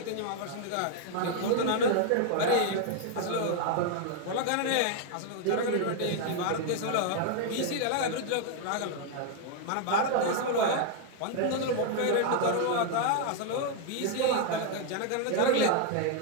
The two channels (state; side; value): different; both; correlation 0.00